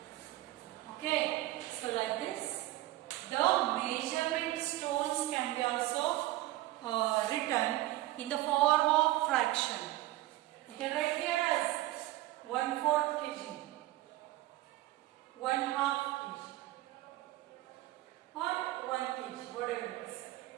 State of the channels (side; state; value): left; quieter; 17.1 dB